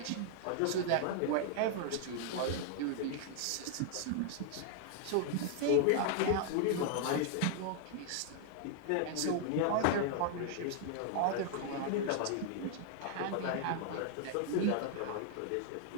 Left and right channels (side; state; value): both; different; correlation 0.00